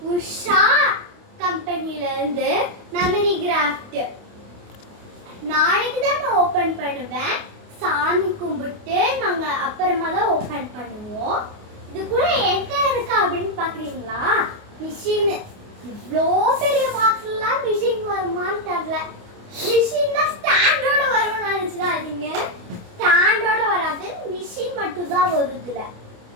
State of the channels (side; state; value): left; late; 28 ms